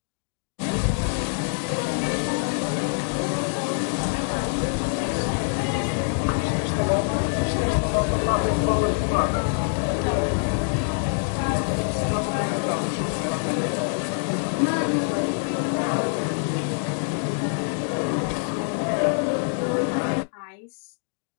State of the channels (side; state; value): right; silent; 59 dB below the other